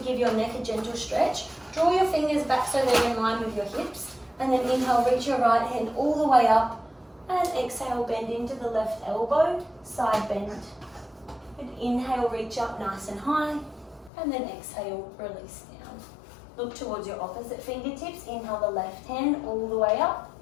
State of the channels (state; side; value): drops out; right; at 14.1 s